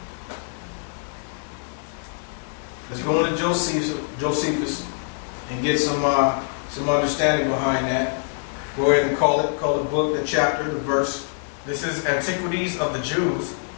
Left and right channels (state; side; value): silent; right; 62 dB below the other